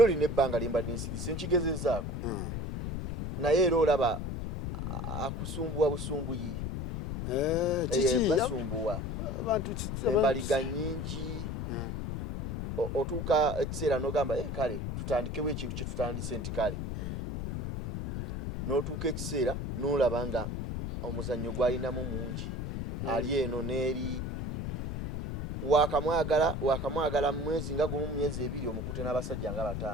lina ebbanga lyembadde nsirise nkigezezaako naye era olaba akusumbuwa busumbuyi. Basumbuwa embaliga nnyingi. Otuuka ekiseera n'ogamba kale tutandikewo ekintu kye tutandise nti kale n'otuuka ekiseera n'olaba nga omuzannyo gwalinamu mungi ali eno n'eri wakamwagala mu mwezi nga gumu, mu myezi ebiri omukute n'abasajja nga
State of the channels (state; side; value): noise; left; rumble, 3 dB below the sound